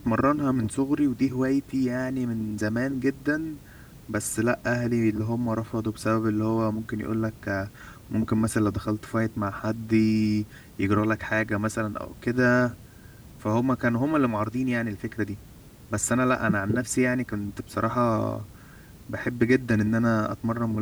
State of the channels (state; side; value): identical; both; correlation 1.00